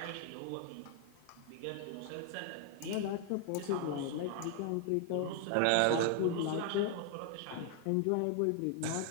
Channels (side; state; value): both; different; correlation 0.00